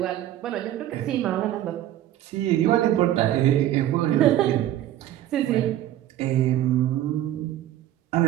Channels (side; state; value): left; quieter; 12.8 dB